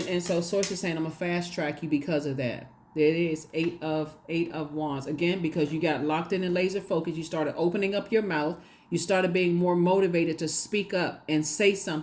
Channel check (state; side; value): identical; both; correlation 1.00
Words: so Source is saying, I'm going to fast track you because of that. There it is, eight of wands. Again, because you got locked in and laser focused, you started opening up your mouth. You started being more motivated to speak up and say